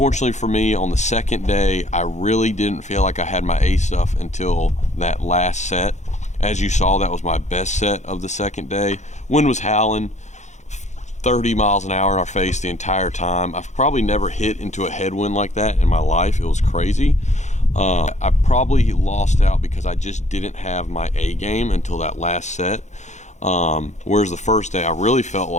for me, on the second day, I really didn't feel like I had my A stuff until that last set. As you saw, that was my best set of the second day. Wind was howling, 30 miles an hour in our face the entire time. I've probably never hit into a headwind like that in my life. It was crazy. I probably lost out because I just didn't have my A game until that last set. Whereas the first day, I really felt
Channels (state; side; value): late; right; 0.34 ms